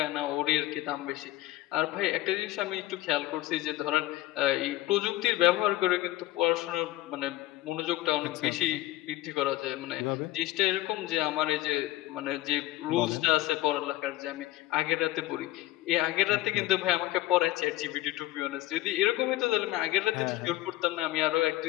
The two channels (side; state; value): right; quieter; 16.6 dB